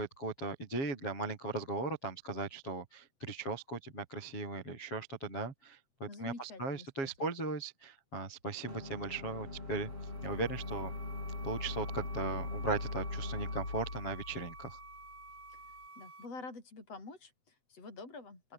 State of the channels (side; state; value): right; late; 7.3 ms